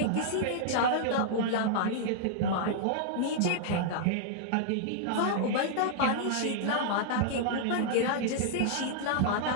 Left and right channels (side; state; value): both; different; correlation -0.01